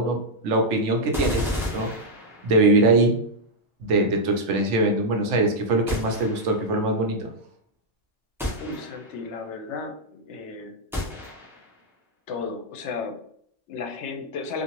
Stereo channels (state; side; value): normal; both; correlation -0.04